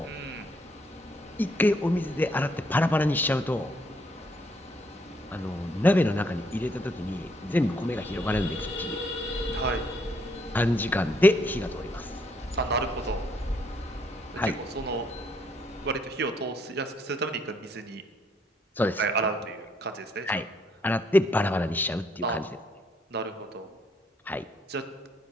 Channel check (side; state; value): both; normal; correlation 0.70